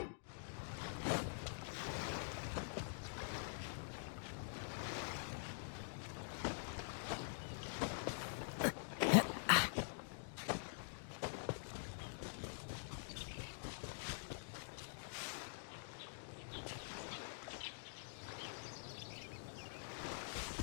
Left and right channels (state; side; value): silent; right; digital silence